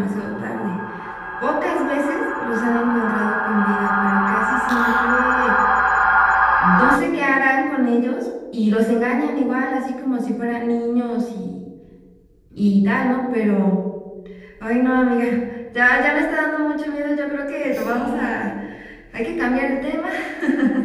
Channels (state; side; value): identical; both; correlation 1.00